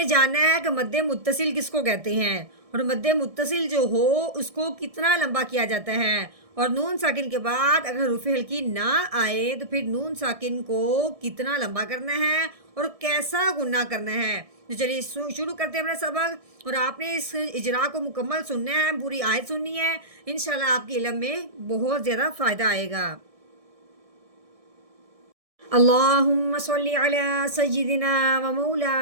جانا ہے کہ مد متصل کس کو کہتے ہیں اور مد متصل جو ہو اس کو کتنا لمبا کیا جاتا ہے، اور نون ساکن کے بعد اگر حروف ہلکی نہ آئے تو پھر نون ساکن کو کتنا لمبا کرنا ہے اور کیسا گننا کرنا ہے۔ تو چلیے شروع کرتے ہیں اپنا سبق، اور آپ نے اس اجرا کو مکمل سننا ہے، پوری آیت سننی ہے، انشاءاللہ آپ کے علم میں بہت زیادہ فائدہ آئے گا۔ اللهم صل على سيدنا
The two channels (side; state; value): left; late; 1.6 ms